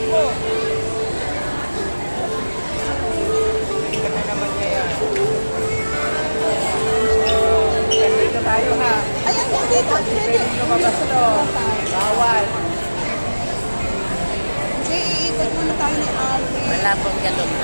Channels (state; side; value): inverted; both; correlation -1.00